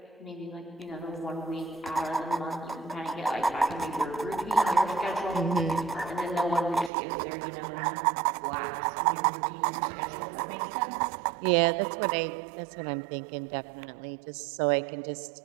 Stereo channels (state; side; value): drops out; left; at 6.9 s